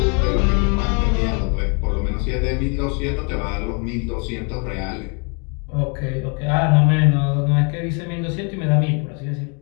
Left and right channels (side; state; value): right; quieter; 35.0 dB